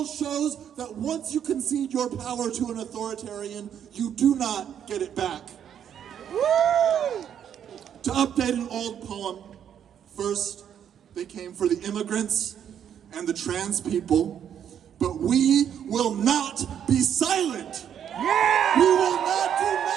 shows that once you concede your power to an authoritarian, you do not get it back. To update an old poem, first they came for the immigrants and the trans people, but we will not be silent. Yeah! We will not do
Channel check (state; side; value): quieter; left; 9.1 dB